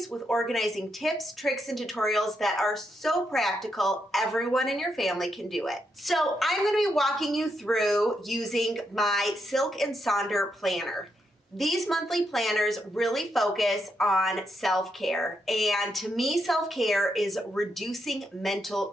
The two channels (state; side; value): normal; both; correlation 0.81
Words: with organizing tips, tricks, and tutorials that are so practical, everyone in your family can do it. So I'm going to be walking you through using my Silk Sonder planner. These monthly planners really focus on self-care, and to me, self-care is reducing mental